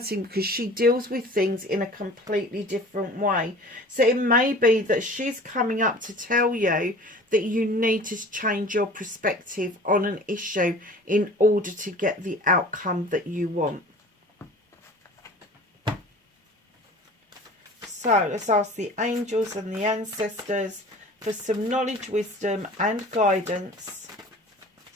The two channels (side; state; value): both; normal; correlation 0.43